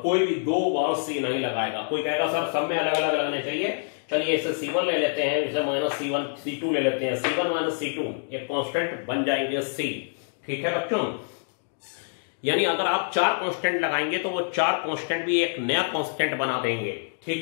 कोई भी दो बार सी नहीं लगाएगा। कोई कहेगा सर सब में अलग अलग लगने चाहिए, चलिए इसे C1 ले लेते हैं, इसे माइनस C1 C2 ले लेते हैं, C1 माइनस C2 एक कांस्टेंट बन जाएंगे C, ठीक है बच्चों। यानी अगर आप 4 कांस्टेंट लगाएंगे तो वो 4 कांस्टेंट भी एक नया कांस्टेंट बना देंगे,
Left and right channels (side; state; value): right; silent; digital silence